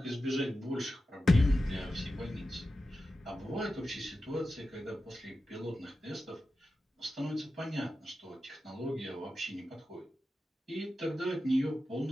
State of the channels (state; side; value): normal; both; correlation 0.92